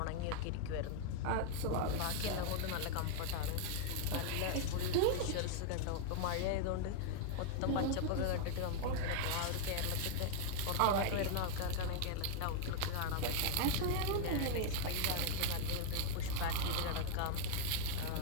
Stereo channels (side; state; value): both; different; correlation 0.00